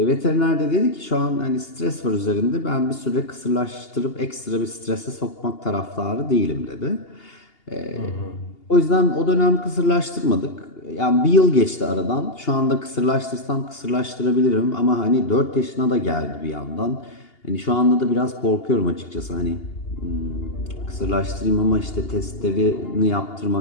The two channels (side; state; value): right; late; 2.8 ms